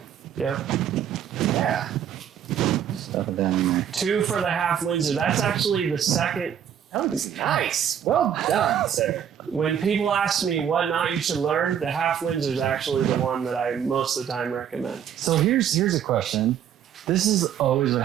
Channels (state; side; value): quieter; left; 9.1 dB